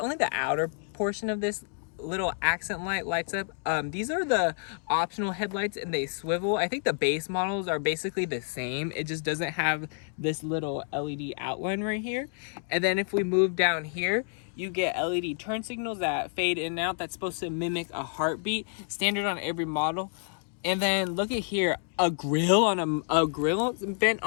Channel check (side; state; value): right; silent; 59 dB below the other